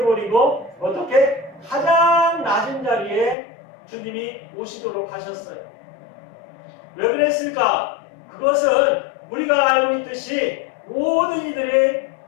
어떻게 가장 낮은 자리에 주님이 오시도록 하셨어요. 왜 그랬을까? 그것은 우리가 알고 있듯이 모든 이들이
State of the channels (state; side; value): drops out; right; at 3.4 s